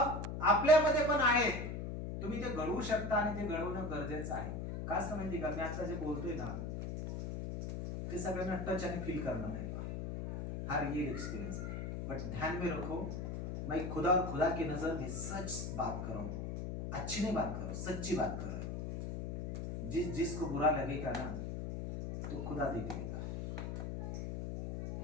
आपल्यामध्ये पण आहे. तुम्ही ते घडवू शकता आणि ते घडवणं गरजेचं आहे. का असं माहिती का, मी आता जे बोलतोय ना ते सगळ्यांना टच आणि फील करणार नाही. हा रियल एक्सपीरियंस है, बट ध्यान में रखो, मैं खुदा और खुदा की नजर में सच बात कर रहा हूं, अच्छी नहीं बात कर रहा हूं, सच्ची बात कर रहा हूं. जिसको बुरा लगेगा ना तो खुदा देख लेगा.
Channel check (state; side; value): noise; left; hum, 4 dB below the sound